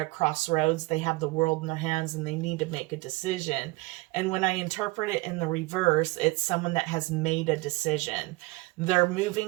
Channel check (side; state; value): left; quieter; 22.5 dB